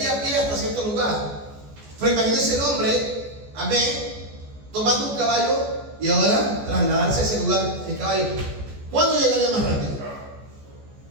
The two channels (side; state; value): left; late; 14 ms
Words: a pie hasta cierto lugar. Pero imagínese el hombre, amén, tomando un caballo y ahora trasladarse a ese lugar en caballo. ¿Cuándo llegaría más rápido?